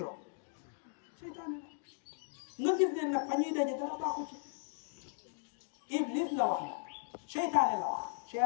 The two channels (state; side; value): silent; right; digital silence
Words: seytaane nga gis ne nag fa ñuy daje dara baaxu ci Iblis la wax nag seytaane la wax